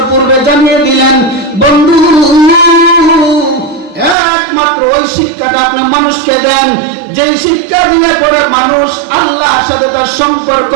পূর্বে জানিয়ে দিলেন, বন্ধু একমাত্র ওই শিক্ষাটা আপনি মানুষকে দেন যেই শিক্ষা দিলে পরে মানুষ আল্লাহর সাথে তার সম্পর্ক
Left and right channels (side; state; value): left; drops out; at 4.2 s